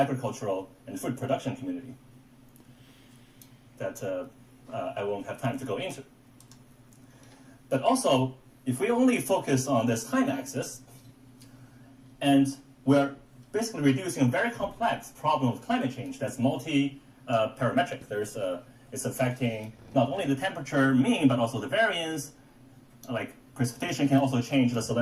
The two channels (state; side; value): identical; both; correlation 1.00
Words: and food production community that I won't have time to go into. But also, if we only focus on this time axis, and we're basically reducing a very complex problem of climate change that's multi-parametric. It's affecting not only the temperature mean, but also the variance. Like precipitation can also change the